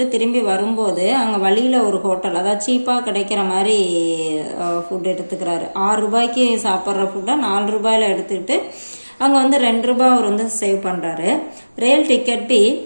திரும்பி வரும்போது அங்கே வழியில் ஒரு ஹோட்டல், அதாவது சீப்பாக கிடைக்கிற மாதிரி ஃபுட் எடுத்துக்கிறாரு. 6 ரூபாய்க்கு சாப்பிட்ற ஃபுட்டை 4 ரூபாயில் எடுத்துக்கிட்டு அங்கே வந்து 2 ரூபாய் அவர் வந்து சேவ் பண்ணுறாரு. रेल टिकट भी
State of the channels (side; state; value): both; inverted; correlation -1.00